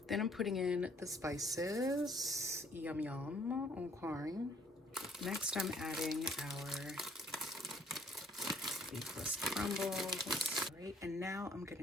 Then I'm putting in the spices. Yum yum. Okay. Next I'm adding our beefless crumbles. All right, and now I'm gonna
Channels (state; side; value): normal; both; correlation 0.63